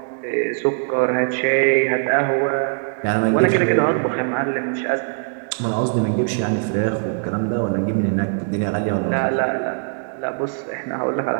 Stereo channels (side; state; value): left; silent; digital silence